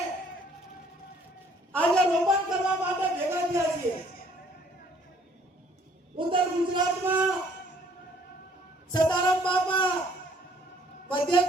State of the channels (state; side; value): normal; both; correlation 0.61